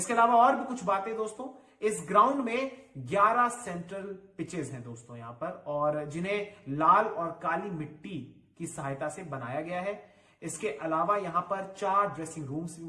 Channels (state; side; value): identical; both; correlation 1.00